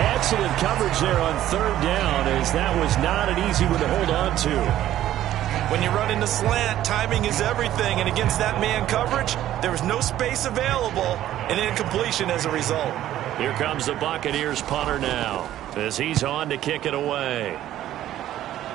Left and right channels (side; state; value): left; quieter; 12.9 dB